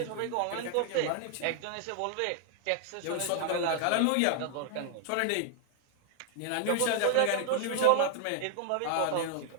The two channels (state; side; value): different; both; correlation 0.00